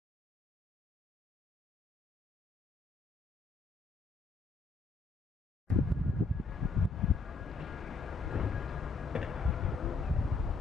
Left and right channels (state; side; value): quieter; right; 4.1 dB